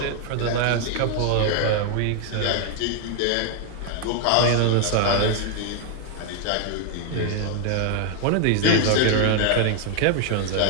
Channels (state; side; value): different; both; correlation 0.00